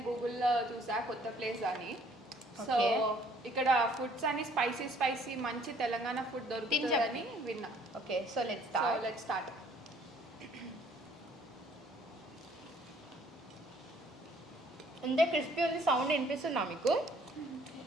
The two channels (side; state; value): both; normal; correlation 0.60